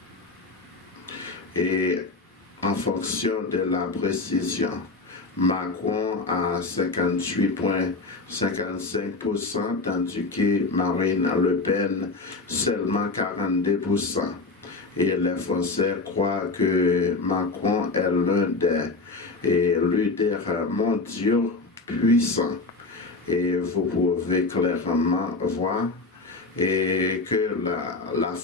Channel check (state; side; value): quieter; right; 3.6 dB